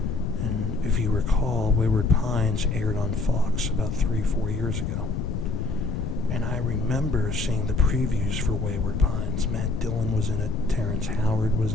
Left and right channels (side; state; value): left; noise; rumble, 2 dB below the sound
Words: And if you recall, Wayward Pines aired on Fox about 3-4 years ago. And I remember seeing the previews for Wayward Pines. Matt Dillon was in it, Terrence Howard was